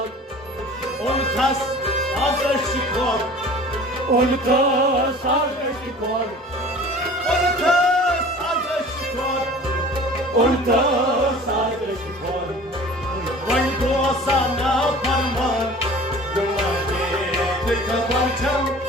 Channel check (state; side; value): normal; both; correlation 0.44